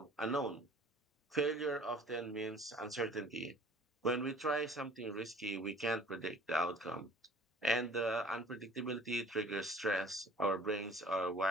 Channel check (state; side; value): normal; both; correlation 0.50